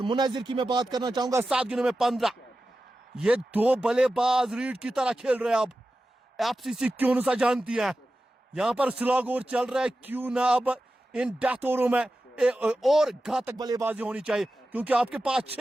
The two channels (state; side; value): normal; both; correlation 0.93